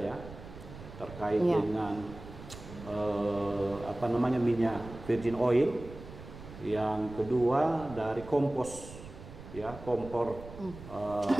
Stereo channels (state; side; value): noise; right; rumble, 15 dB below the sound